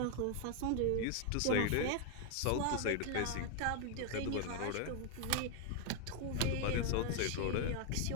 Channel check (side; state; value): both; different; correlation 0.00